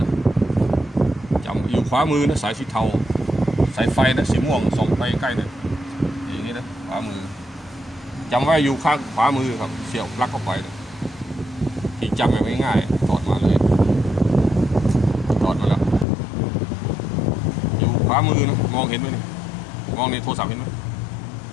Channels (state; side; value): drops out; right; at 16.1 s